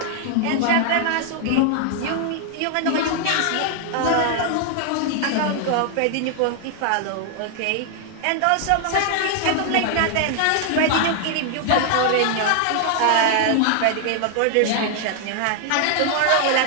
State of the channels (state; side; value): different; both; correlation 0.00